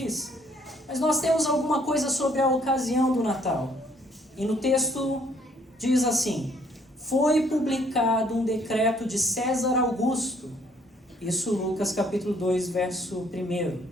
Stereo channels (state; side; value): normal; both; correlation 0.64